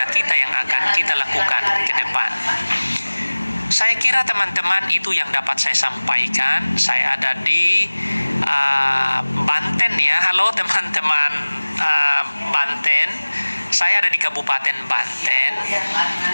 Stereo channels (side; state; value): both; inverted; correlation -1.00